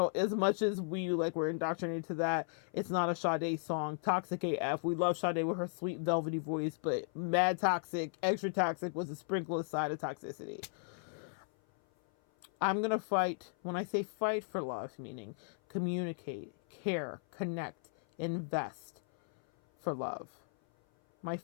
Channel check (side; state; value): right; silent; 54 dB below the other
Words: as much as we're indoctrinated to that, it's not a Sade song. Toxic AF. We love Sade with her sweet velvety voice, but mad toxic, extra toxic was a sprinkle aside of toxicity. I'm going to fight. When I say fight for love, meaning communicate, care, connect, invest for love. My